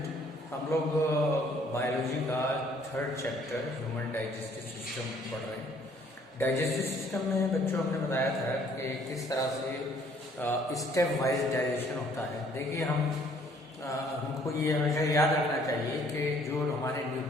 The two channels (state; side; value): normal; both; correlation 0.61